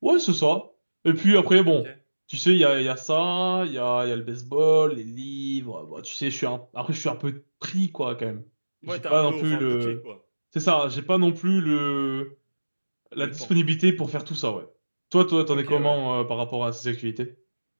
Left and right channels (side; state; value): both; inverted; correlation -1.00